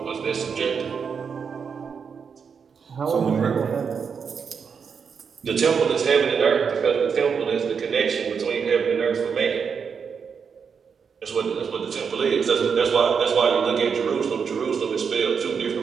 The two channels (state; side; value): quieter; left; 6.3 dB